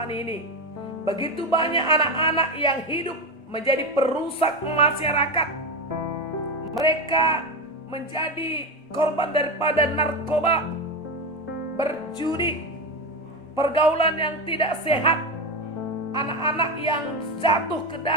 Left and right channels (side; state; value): both; normal; correlation 0.16